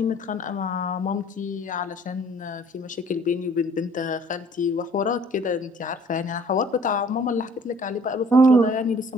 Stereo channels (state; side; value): normal; both; correlation 0.55